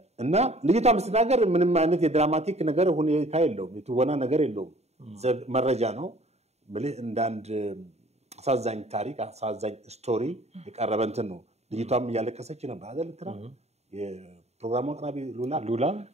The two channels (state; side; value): late; left; 0.31 ms